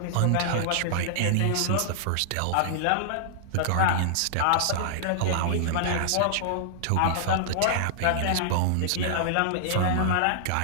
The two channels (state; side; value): different; both; correlation -0.01